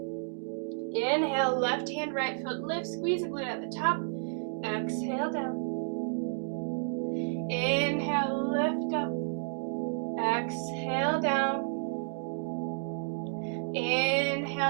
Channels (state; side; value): silent; left; digital silence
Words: Inhale, left hand, right foot lift, squeeze the glute at the top. Exhale down. Inhale, lift up. Exhale down.